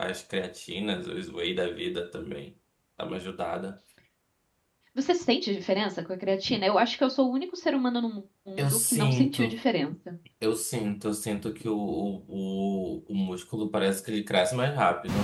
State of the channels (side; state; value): both; identical; correlation 1.00